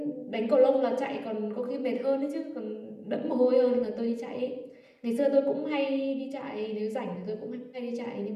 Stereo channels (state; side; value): identical; both; correlation 1.00